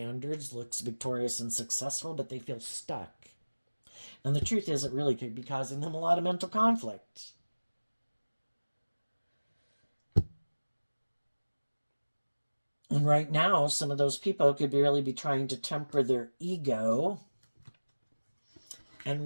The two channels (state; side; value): inverted; both; correlation -1.00